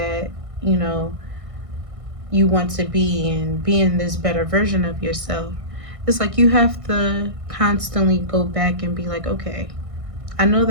you know, you want to be and being this better version of yourself, it's like you have to constantly go back and be like, okay, I know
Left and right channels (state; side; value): late; left; 1.6 ms